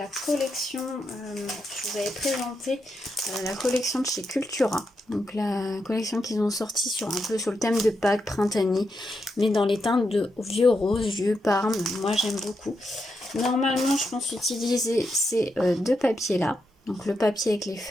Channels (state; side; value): normal; both; correlation 0.84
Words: collection, je vous avais présenté la collection de chez Cultura. Donc la collection qu'ils ont sorti sur un peu sur le thème de Pâques, printanier, mais dans les teintes de vieux rose, vieux parme, moi j'aime beaucoup. Normalement je pense utiliser ces deux papiers là. Donc le papier avec les